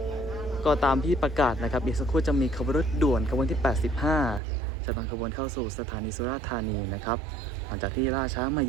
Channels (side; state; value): left; drops out; at 4.4 s